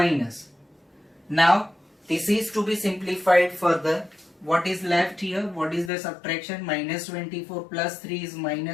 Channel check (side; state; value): right; drops out; at 5.9 s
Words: Now this is to be simplified further. What is left here? What is the subtraction? Minus 24 plus 3 is